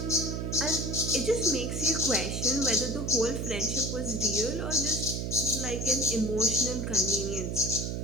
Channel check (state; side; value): noise; right; hum, 2 dB below the sound